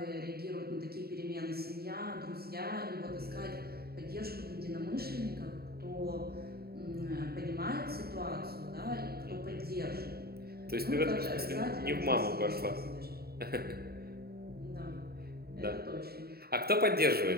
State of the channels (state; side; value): late; left; 0.45 ms